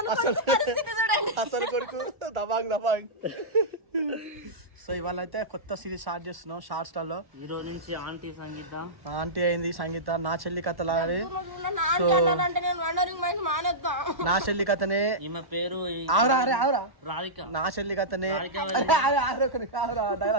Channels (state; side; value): late; left; 1.1 ms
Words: అసలు కొడుకు దబాంగ్. సో ఇవాళ అయితే కొత్త సిరీస్ స్టార్ట్ చేస్తున్నాం షార్ట్ స్టార్ లో. ఈ రోజు నుంచి ఆంటీ అయింది సంగీత, నా చెల్లి కథ లాగానే. సో నా చెల్లి కథనే ఈమె పేరు రాధిక. నా చెల్లి కథనే